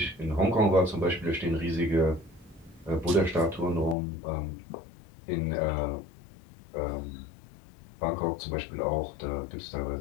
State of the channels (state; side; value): drops out; right; at 4.0 s